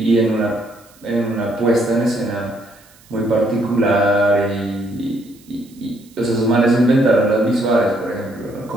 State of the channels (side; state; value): right; noise; hiss, 28 dB below the sound